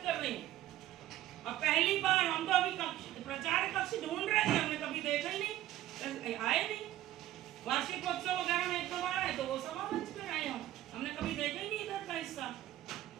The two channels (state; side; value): quieter; left; 14.1 dB